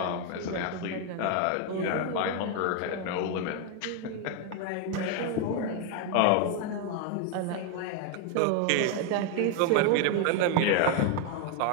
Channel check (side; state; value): both; different; correlation 0.01